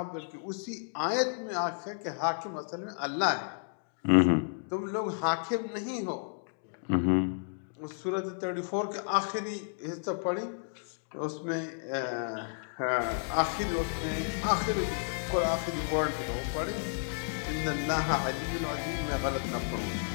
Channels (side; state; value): right; silent; digital silence